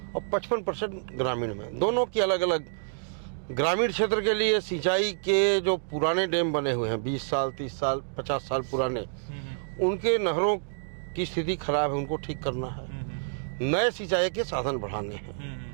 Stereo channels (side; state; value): left; silent; digital silence